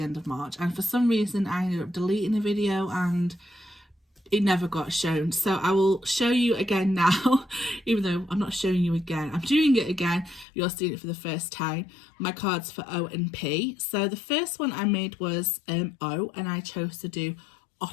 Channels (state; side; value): drops out; right; at 10.5 s